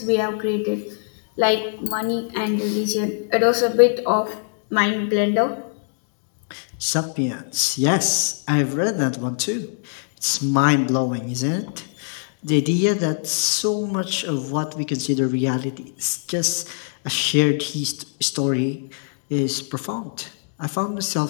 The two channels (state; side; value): silent; right; digital silence